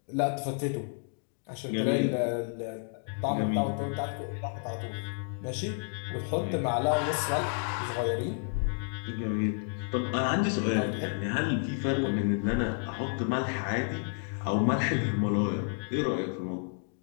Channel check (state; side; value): silent; right; 57 dB below the other